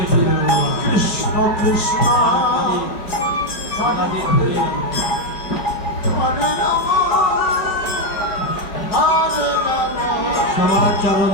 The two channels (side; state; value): right; late; 5.0 ms